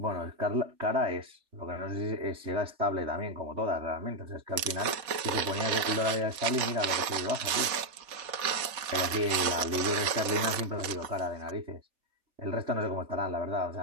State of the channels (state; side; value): late; left; 3.4 ms